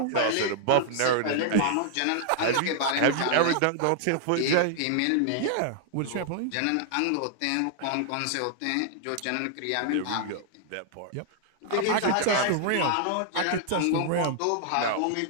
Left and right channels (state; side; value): different; both; correlation -0.01